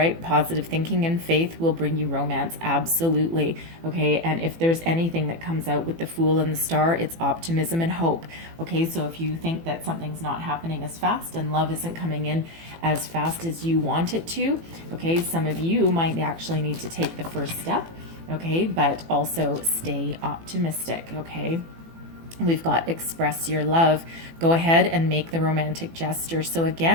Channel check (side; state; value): left; late; 18 ms